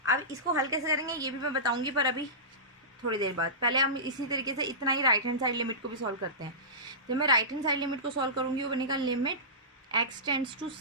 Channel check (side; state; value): both; normal; correlation -0.20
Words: अब इसको हल कैसे करेंगे ये भी मैं बताऊंगी, पर अभी थोड़ी देर बाद। पहले हम इसी तरीके से इतना ही राइट हैंड साइड लिमिट को भी सॉल्व करते हैं। जब मैं राइट हैंड साइड लिमिट को सॉल्व करूंगी वो बनेगा limit x tends to